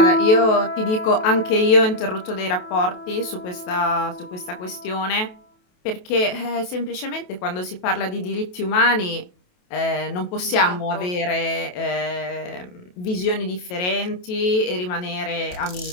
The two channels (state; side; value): late; right; 28 ms